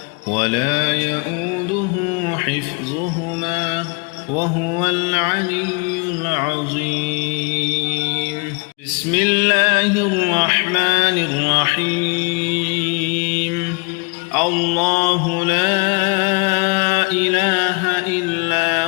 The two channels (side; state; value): right; quieter; 33.2 dB